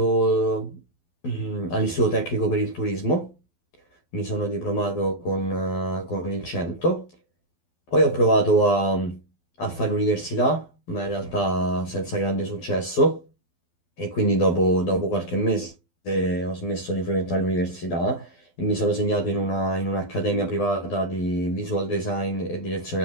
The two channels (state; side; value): late; right; 12 ms